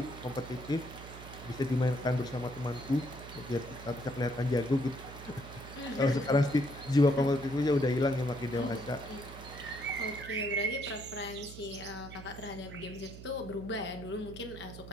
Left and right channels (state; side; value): noise; right; hum, 13 dB below the sound